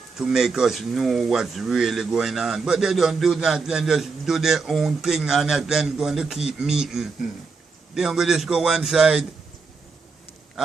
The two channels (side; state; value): left; quieter; 4.6 dB